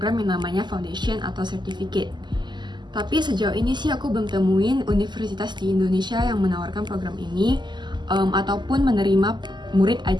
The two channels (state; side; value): late; left; 0.21 ms